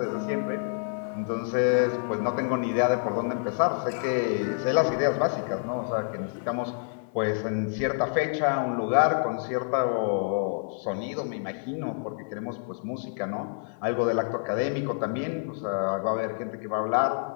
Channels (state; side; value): silent; right; digital silence